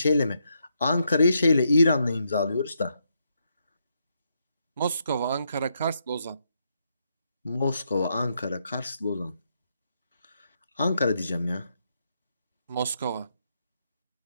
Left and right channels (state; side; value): inverted; both; correlation -0.79